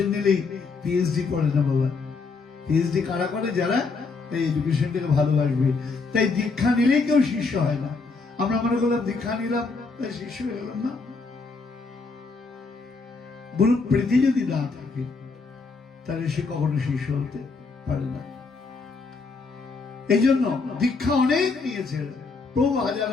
নিলেই পিএইচডি করে না বাবা। পিএইচডি কারা করে? যারা এই এডুকেশনটাকে ভালোবাসবে। তাই দীক্ষা নিলেই কেউ শিষ্য হয় না। আমরা মনে করলাম দীক্ষা নিলাম তাই শিষ্য হয়ে গেলাম না। গুরু প্রীতি যদি না থাকে তাহলে সে কখনো শিষ্য হতে পারে না। এই জন্য দীক্ষা অনেক নিয়েছে প্রভু, হাজার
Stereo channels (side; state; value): right; quieter; 4.3 dB